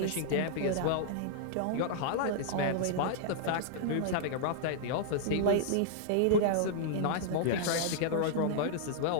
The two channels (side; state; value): both; different; correlation -0.01